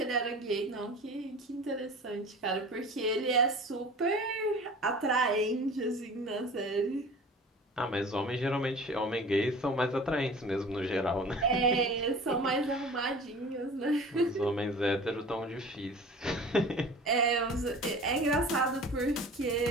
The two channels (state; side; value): normal; both; correlation 0.41